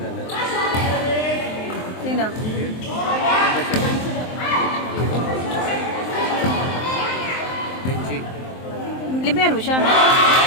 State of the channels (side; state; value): right; late; 23 ms